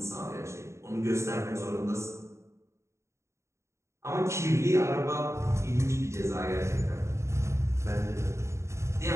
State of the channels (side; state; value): left; late; 0.14 ms